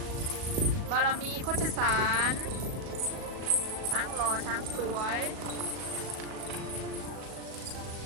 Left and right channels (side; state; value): left; late; 37 ms